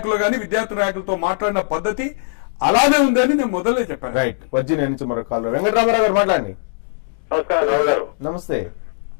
గానీ విద్యార్థి నాయకులతో మాట్లాడిన పద్ధతి అలానే ఉందని నేను మొదలే చెప్పాను. రైట్. వర్జీనియా నుంచి మరో కాల్ వెంకటరామారావు గారు మాట్లాడండి. నమస్కారం రావు గారు. నమస్తే.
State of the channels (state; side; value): silent; right; digital silence